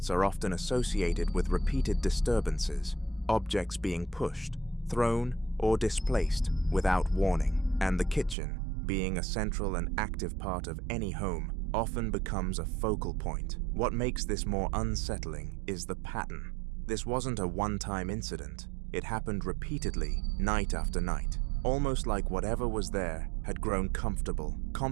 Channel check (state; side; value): drops out; left; at 8.3 s